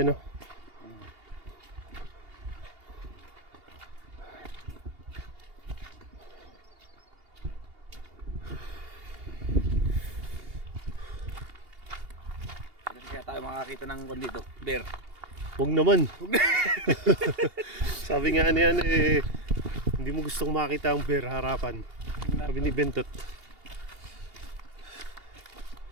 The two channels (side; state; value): left; late; 2.8 ms